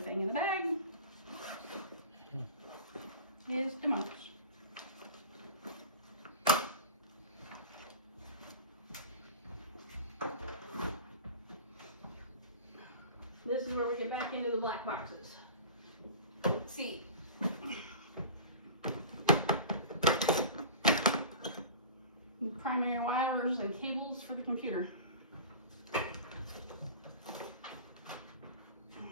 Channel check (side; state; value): both; inverted; correlation -0.36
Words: in the bag is the mouse. This is where we get back into the black boxes. Let's see. Primary wires and cables for the computer.